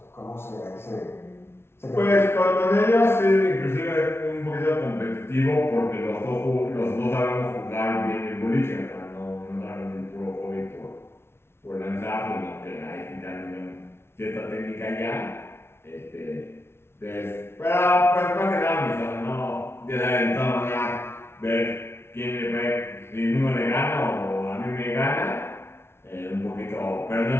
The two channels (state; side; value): late; right; 0.12 ms